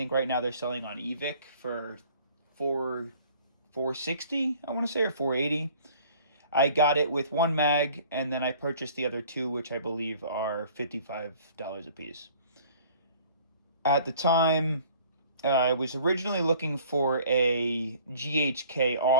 right now they're selling on eVic for $460, I want to say, or $480. I got it with one mag, and then I purchased the other two, which I believe are $55 a piece. At the time, I was originally looking for a GHK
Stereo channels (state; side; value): inverted; both; correlation -0.53